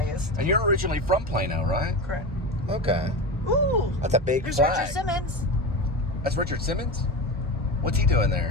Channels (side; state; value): both; normal; correlation 0.23